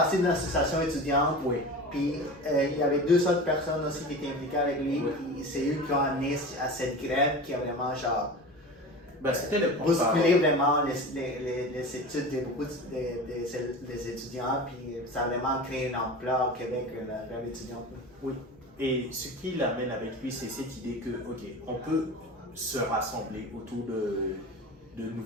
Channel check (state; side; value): normal; both; correlation 0.32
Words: d'une association étudiante. Oui. Puis il y avait 2 autres personnes aussi qui étaient impliquées avec lui. Puis c'est eux qui ont amené à cette grève qui a vraiment genre Ben, c'était le bousculer vraiment les études de beaucoup des étudiants, puis ça a vraiment créé une ampleur au Québec, la grève étudiante. Oui. Et ce qui l'amène avec lui, c'est cette idée que, OK, on peut se rassembler autour de